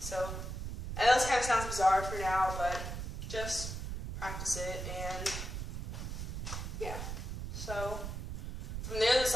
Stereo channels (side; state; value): right; noise; rumble, 5 dB below the sound